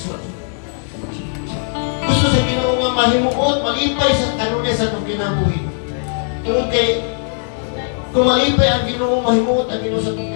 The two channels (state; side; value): silent; right; digital silence